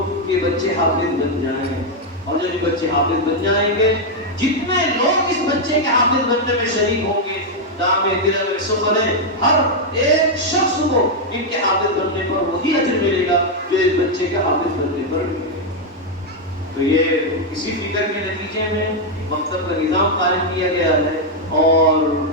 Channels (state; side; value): normal; both; correlation 0.00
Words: کہ بچے حافظ بن جائیں، اور جو بچے حافظ بن جائیں گے، جتنے لوگ اس بچے کے حافظ بننے میں شریک ہوں گے، دامِ دل میں سفر ہے، ہر ایک شخص کو ان کے حافظ بننے پر وہی اجر ملے گا جو اس بچے کے حافظ بننے پر ملے گا۔ تو یہ اسی فکر کے نتیجے میں مکتب کا نظام قائم کیا گیا ہے، اور